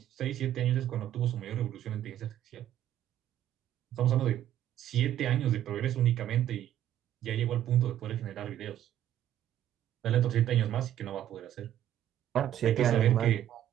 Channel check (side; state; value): left; quieter; 11.6 dB